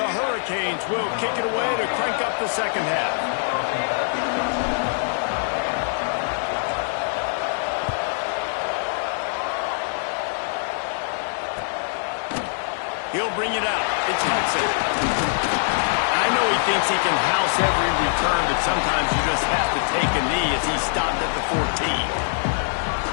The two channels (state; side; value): silent; right; 61 dB below the other